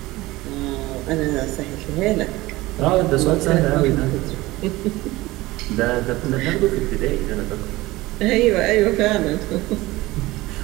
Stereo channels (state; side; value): quieter; left; 19.3 dB